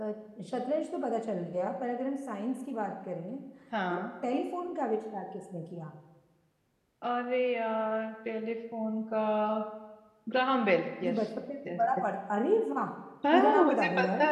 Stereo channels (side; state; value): both; identical; correlation 1.00